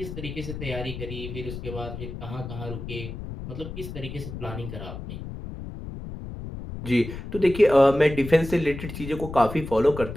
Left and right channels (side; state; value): left; noise; rumble, 9 dB below the sound